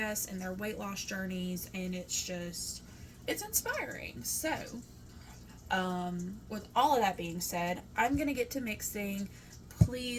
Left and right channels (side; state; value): both; identical; correlation 1.00